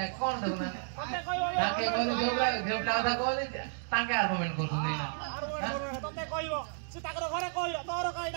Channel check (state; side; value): silent; left; digital silence